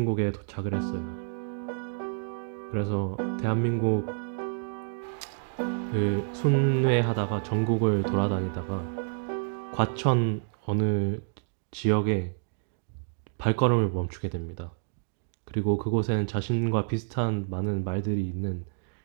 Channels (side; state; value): left; silent; digital silence